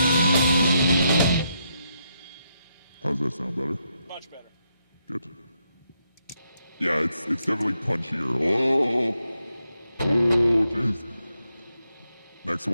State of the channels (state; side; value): inverted; both; correlation -0.81